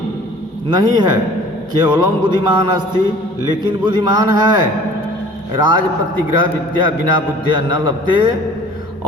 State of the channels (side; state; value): both; normal; correlation 0.48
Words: नहीं है, केवलम बुद्धिमान अस्ति, लेकिन बुद्धिमान है। राज प्रतिग्रह विद्या बिना बुद्धिया न लभते।